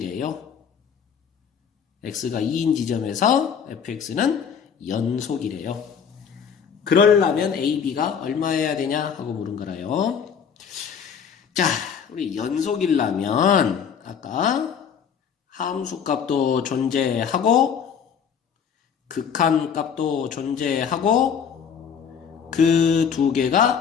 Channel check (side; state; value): right; quieter; 7.3 dB